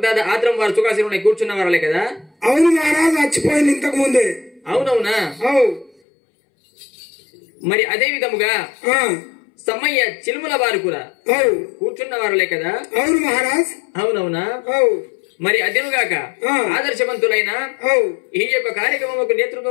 దాదా ఆత్రం వారు సుఖాసీనులై కూర్చున్న వారలే కదా. అవును మహారాజ్, మర్చిపోయింది ఇంతకు ముందే. అవునవునా. మరి అదే విధముగా సమయ్య చిలుముల వారు కూడా కూర్చున్న వారలే కదా. అవును మహారాజ్. అవునవునా. మరి అదేనుగాక ఆదర్శవంతులైన ఈ యొక్క కార్యక్రమం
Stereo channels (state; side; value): drops out; right; at 5.9 s